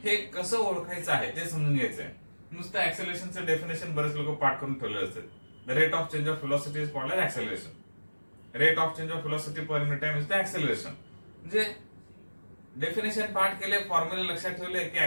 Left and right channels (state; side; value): inverted; both; correlation -1.00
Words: हे कसं ओळखायचं आहे ते समजून घ्यायचं आहे. नुसतं ऍक्सेलरेशनचं डेफिनेशन बरेच लोक पाठ करून ठेवले असतात. The rate of change of velocity is called as acceleration. Rate of change of velocity per unit time is the acceleration. म्हणजे डेफिनेशन पाठ केले, फॉर्म्युला लक्षात ठेवले की